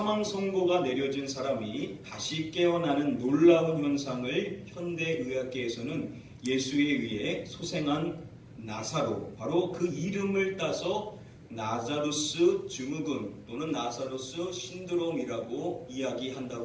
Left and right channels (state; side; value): identical; both; correlation 1.00